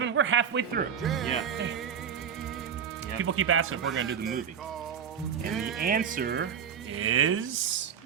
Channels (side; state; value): left; quieter; 7.8 dB